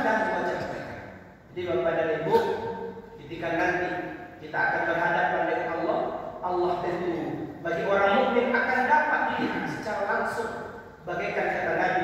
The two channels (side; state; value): both; identical; correlation 1.00